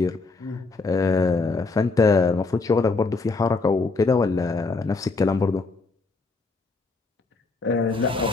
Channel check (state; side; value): quieter; right; 3.8 dB